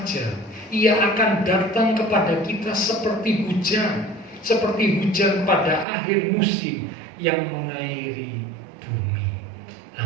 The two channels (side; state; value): left; drops out; at 5.9 s